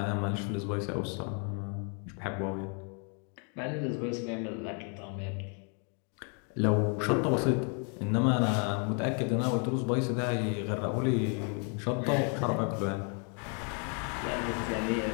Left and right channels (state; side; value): quieter; right; 39.3 dB